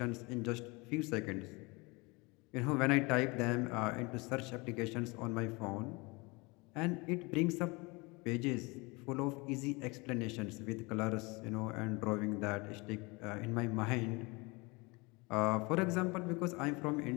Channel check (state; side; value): quieter; right; 26.5 dB